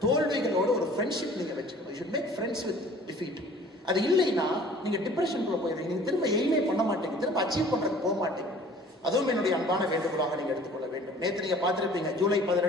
தோல்விகளோட ஒரு ஃப்ரெண்ட்ஷிப் நீங்க வச்சுக்கணும். You should make friends with defeat. அது இல்லைன்னா நீங்க டிப்ரெஷனுக்குள்ள போயிடுறீங்க, நீங்க திரும்ப எய்மே பண்ண மாட்டீங்க, திரும்ப அச்சீவ் பண்றதுக்கு போக மாட்டீங்க. அதுவும் என்னுடைய அன்பான வேண்டுகோளாக நீங்க எடுத்துக்கொள்ள வேண்டும். நேற்று நீங்க பார்த்திருப்பீங்க, ஜூலை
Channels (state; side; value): normal; both; correlation 0.50